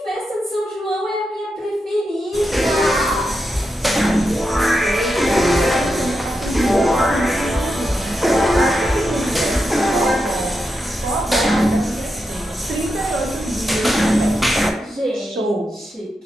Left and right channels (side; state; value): both; normal; correlation 0.87